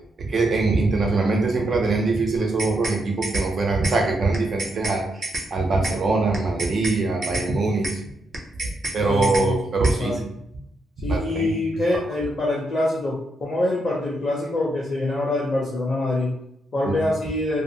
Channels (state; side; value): normal; both; correlation 0.81